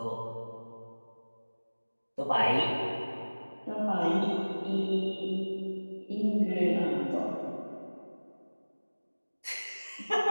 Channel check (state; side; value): inverted; both; correlation -1.00